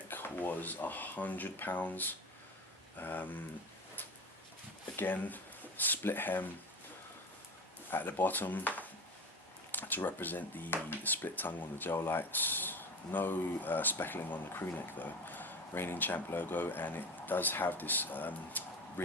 was £100. Again, split hem at the bottom to represent the split tongue on the Gel Lytes. No speckling on the crew neck though. Reigning Champ logo, and it does have this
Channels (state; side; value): normal; both; correlation 0.30